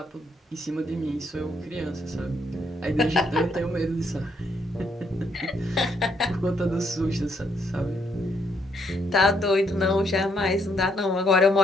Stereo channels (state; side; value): normal; both; correlation 0.73